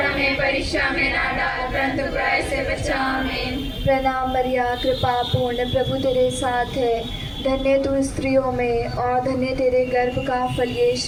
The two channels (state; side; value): identical; both; correlation 1.00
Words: हमें परीक्षा में ना डाल परंतु बुराई से बचा। आमीन। प्रणाम मरिया, कृपा पूर्ण, प्रभु तेरे साथ है, धन्य तू स्त्रियों में और धन्य तेरे गर्भ का फल